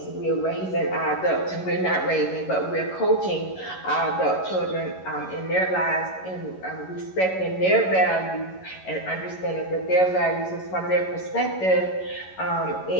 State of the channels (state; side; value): late; right; 11 ms